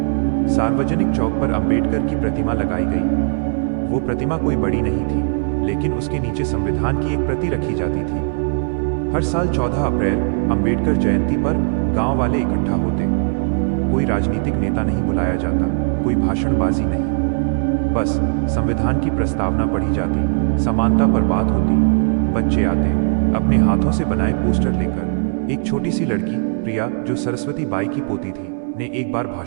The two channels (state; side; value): silent; left; 67 dB below the other